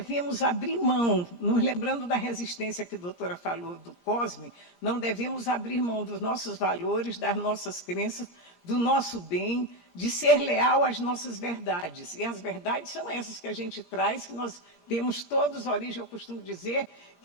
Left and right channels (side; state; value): right; late; 17 ms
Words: abrir mão, nos lembrando da resistência que a doutora falou do COSME, não devemos abrir mão dos nossos valores, das nossas crenças, do nosso bem, de ser leal às nossas verdades. E as verdades são essas que a gente traz, que nós temos todos origem. Eu costumo dizer